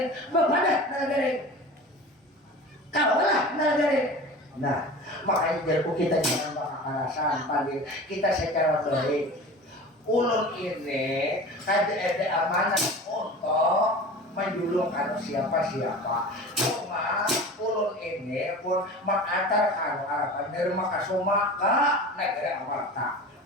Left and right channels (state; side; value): normal; both; correlation 0.36